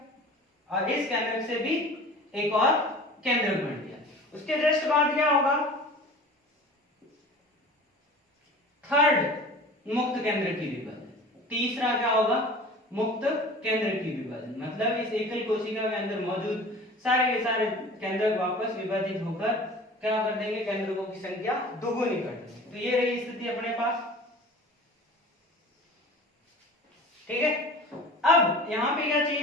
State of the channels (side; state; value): both; normal; correlation 0.41